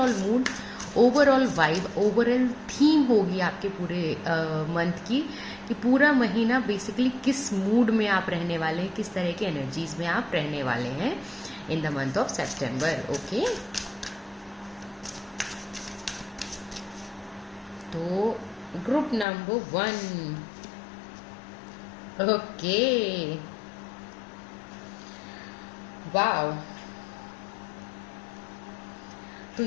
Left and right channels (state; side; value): drops out; right; at 19.2 s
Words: mood, overall vibe, overall theme होगी आपके पूरे मंथ की, कि पूरा महीना बेसिकली किस मूड में आप रहने वाले हैं, किस तरह की एनर्जीज में आप रहने वाले हैं इन the month of September. Okay, तो ग्रुप नंबर 1। Okay, wow. तो